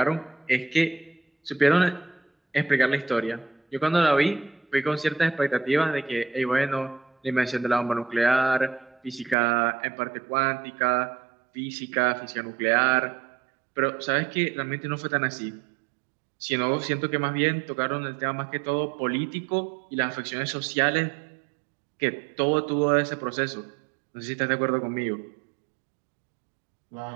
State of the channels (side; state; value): left; drops out; at 9.3 s